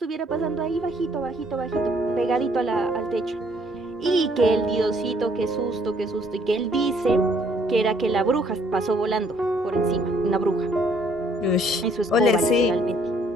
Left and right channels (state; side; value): normal; both; correlation 0.64